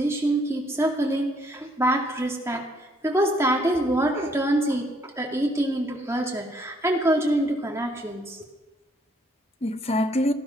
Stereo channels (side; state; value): both; normal; correlation 0.68